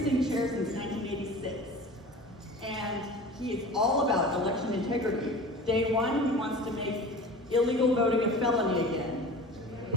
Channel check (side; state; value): both; normal; correlation 0.37